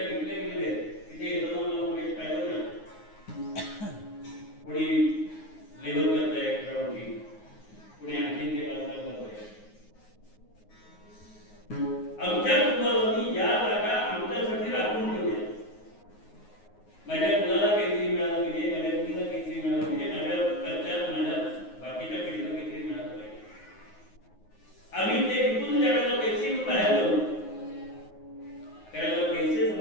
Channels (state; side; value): late; right; 9.5 ms